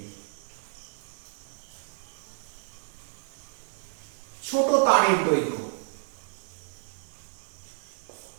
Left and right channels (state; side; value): silent; left; 57 dB below the other